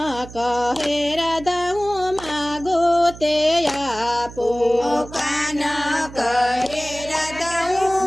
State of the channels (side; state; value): right; noise; hum, 16 dB below the sound